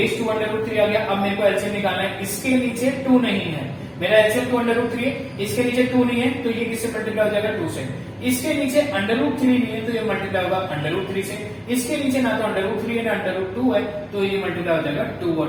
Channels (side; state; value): both; identical; correlation 1.00